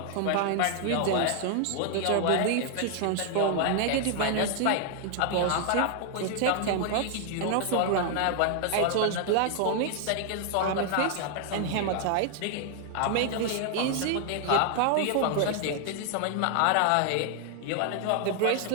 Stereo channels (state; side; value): different; both; correlation 0.00